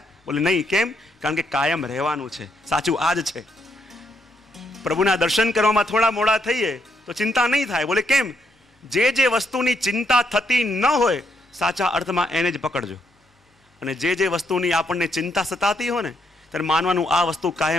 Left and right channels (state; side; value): normal; both; correlation 0.76